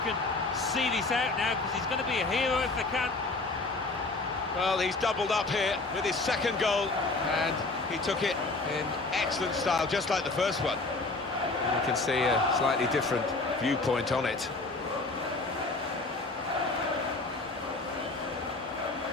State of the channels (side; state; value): right; quieter; 3.4 dB